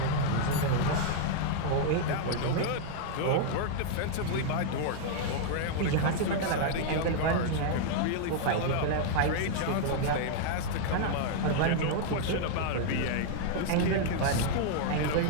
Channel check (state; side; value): different; both; correlation -0.01